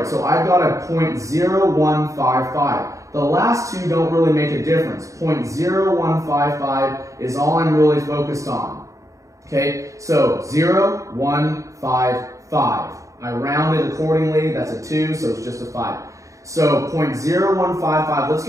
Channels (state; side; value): late; left; 0.16 ms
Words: So I've got a 0.0155. The last two don't really make a difference. 0.0155 is all I'm really focused on. Okay, so 0.155. I round it accordingly. That's a 2, so it's just a 5. So 0.0155. Let's